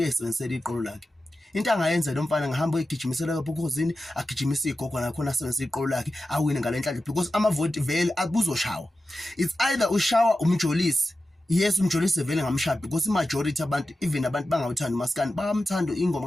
uyisebenzisela iqolo lakhe. Into angayenza lo mfana ngahamba egijimisela lapho ekhosini, agijimisa igogo nakhona asebenzisa iqolo lakhe awine ngalenhlanhla because amavoti vele abuzoshawa. It's either ushawa umjolisi, yes umjolisi vele ngamshaya because imajority abantu, even abantu bangawuthanda uMaskandi bamthanda ingoma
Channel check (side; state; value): both; normal; correlation 0.93